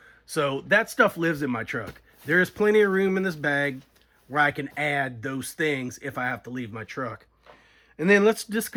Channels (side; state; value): both; identical; correlation 1.00